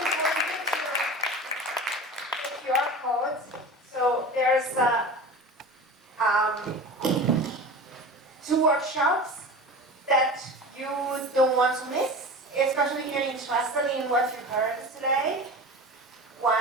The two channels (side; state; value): both; normal; correlation 0.33